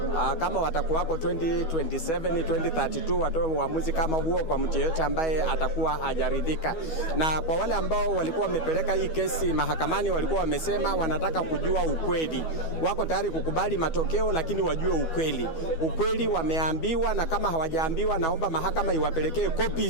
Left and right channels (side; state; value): right; late; 12 ms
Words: kama watakuwako 2027 2032 watoe uamuzi kama huo kwa mtu yeyote ambaye atakuwa hajaridhika. Na kwa wale ambao walikuwa wamepeleka hii kesi mahakamani, walikuwa wamesema wanataka kujua ukweli. Wako tayari kukubali matokeo, lakini wajue ukweli. Ukweli wameambiwa, na kama hawajaambiwa, naomba mahakama iwapelekee